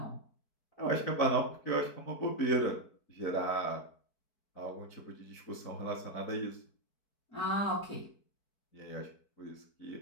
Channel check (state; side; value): late; right; 4.6 ms